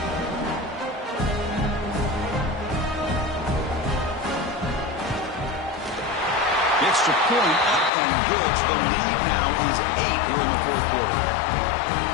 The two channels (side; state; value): right; drops out; at 7.9 s